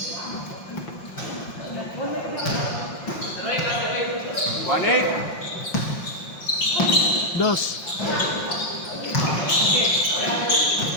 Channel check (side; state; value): right; late; 5.7 ms